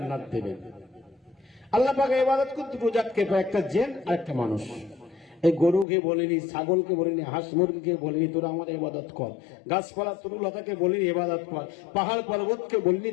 দেবেন। আল্লাহ পাকের ইবাদত করতে দুটো জাতকে, একটা জিন আর একটা মানুষ। এই গরুকে বলিনি, ছাগলকে বলিনি, হাঁস মুরগিকে বলিনি তোরা আমার ইবাদত কর, গাছপালা তরুলতাকে বলিনি ইবাদত কর, পাহাড় পর্বতকে বলিনি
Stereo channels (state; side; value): drops out; right; at 5.9 s